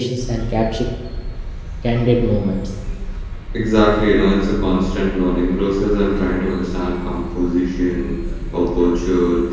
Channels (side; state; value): both; identical; correlation 1.00